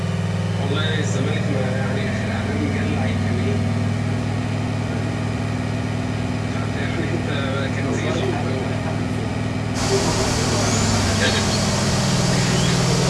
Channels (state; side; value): identical; both; correlation 1.00